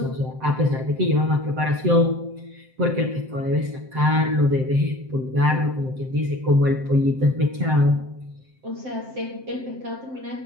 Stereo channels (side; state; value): left; late; 7.7 ms